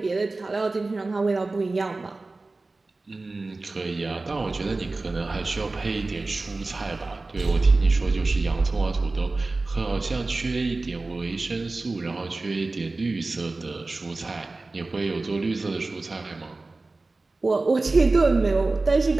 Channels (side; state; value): left; quieter; 3.4 dB